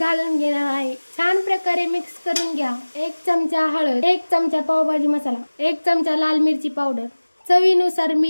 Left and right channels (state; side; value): inverted; both; correlation -1.00